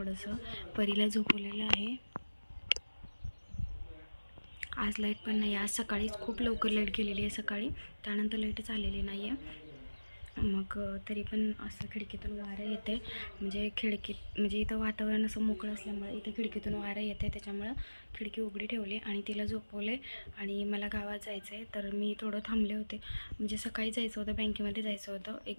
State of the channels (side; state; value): both; inverted; correlation -1.00